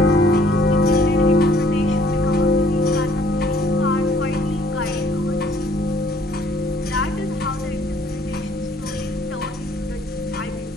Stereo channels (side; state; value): both; normal; correlation 0.60